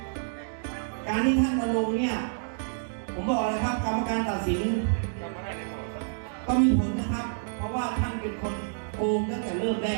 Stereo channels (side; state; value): left; silent; digital silence